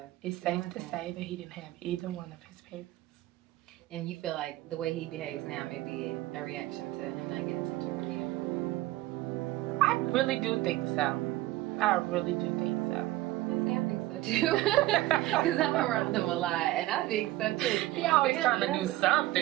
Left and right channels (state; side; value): quieter; left; 17.0 dB